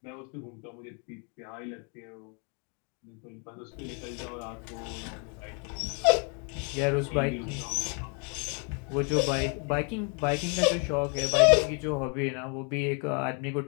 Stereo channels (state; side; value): quieter; right; 37.5 dB